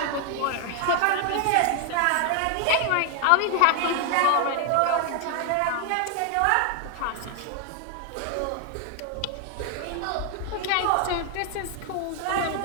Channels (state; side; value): different; both; correlation 0.00